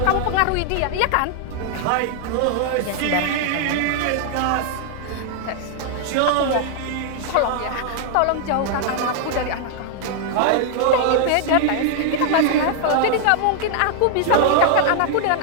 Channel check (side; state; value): both; different; correlation 0.00